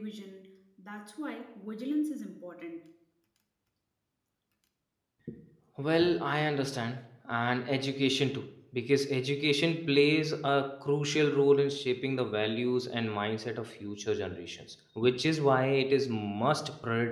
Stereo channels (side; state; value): both; identical; correlation 1.00